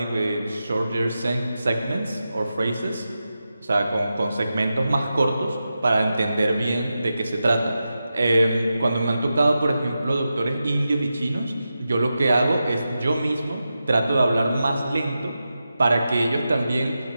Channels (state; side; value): inverted; both; correlation -0.91